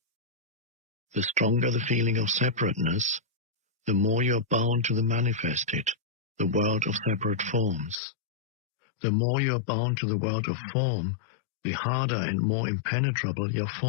The stronger the feeling of separateness, the more you are bound to the manifested, the world of separate forms. The more you are bound to the world of form, the harder and more impenetrable your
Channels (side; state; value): right; drops out; at 8.0 s